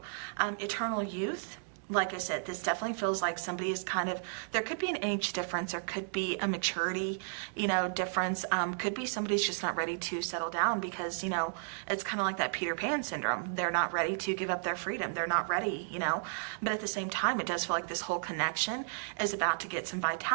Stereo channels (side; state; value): left; silent; digital silence